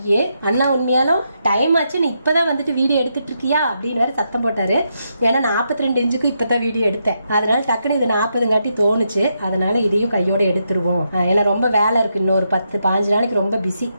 அண்ணா உண்மையாலும் டைம் ஆச்சு, நீ இப்பதான் வந்துட்டு வீடியோ எடுத்துட்டு இருக்கியா அப்படின்னு வேற சத்தம் போட்டாரு. ஏன்னா 42 இன்ச்சுக்கு இப்பதான் வீடியோ எடுத்தேன், அதனால டக்குனு இது 40 தோணுச்சு, அதனால இதையும் கையோட எடுத்துருவோம். ஏன்னா ரொம்ப வேலை இருக்கு, இன்னொரு 10-15 நாளைக்கு ரொம்ப பிஸி,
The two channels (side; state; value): both; inverted; correlation -0.81